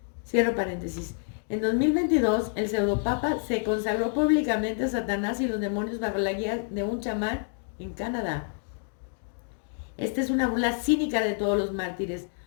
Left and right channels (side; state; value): right; silent; 57 dB below the other